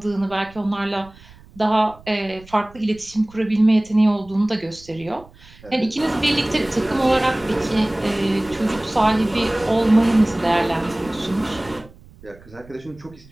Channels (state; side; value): noise; right; rumble, 23 dB below the sound